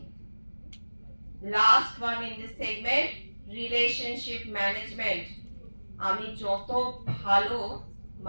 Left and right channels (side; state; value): both; inverted; correlation -1.00